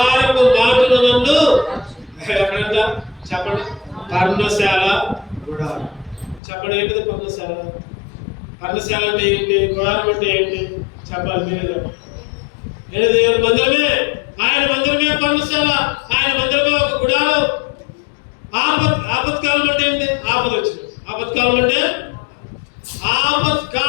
మాటను నన్ను. ఎక్కడంట చెప్పండి? పర్ణశాల, గుడారం. చెప్పండి, ఏంటిది పర్ణశాల? పర్ణశాల అంటే ఏంటి? గుడారం అంటే ఏంటి? చెప్పాలి మీరే. దేవుని మందిరమే. ఆయన మందిరమే పర్ణశాల, ఆయన మందిరమే ఒక గుడారం. ఆపత్కాలం అంటే ఏంటి? ఆపద వచ్చింది. ఆపత్కాలం అంటే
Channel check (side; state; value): right; drops out; at 6.4 s